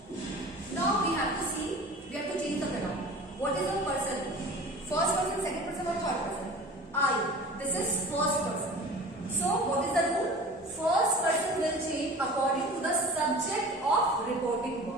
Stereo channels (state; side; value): normal; both; correlation 0.40